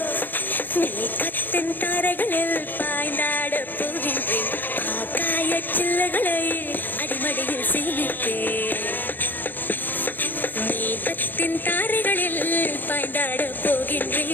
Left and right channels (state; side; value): late; right; 0.090 ms